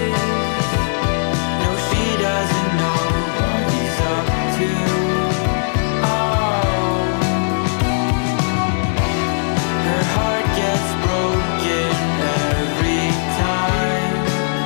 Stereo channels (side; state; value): right; silent; digital silence